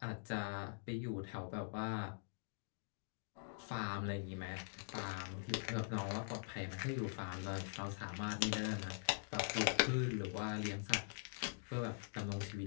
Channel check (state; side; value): silent; right; digital silence